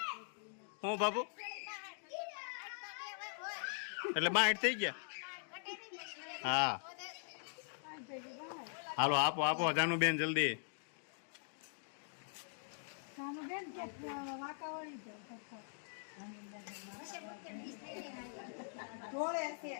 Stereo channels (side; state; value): right; silent; digital silence